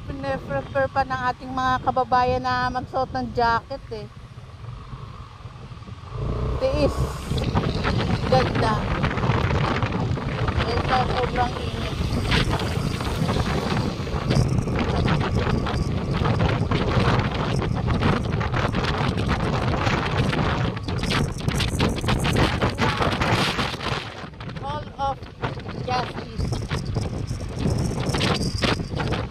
prefer pa ng ating mga kababayan na magsuot ng jacket eh. Tiis. Ganda. Ito sobrang init.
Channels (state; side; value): identical; both; correlation 1.00